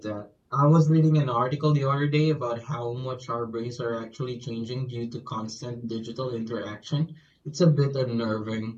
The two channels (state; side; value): identical; both; correlation 1.00